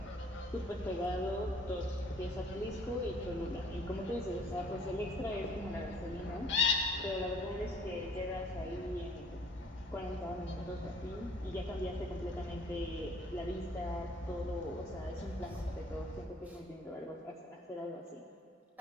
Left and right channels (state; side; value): normal; both; correlation 0.56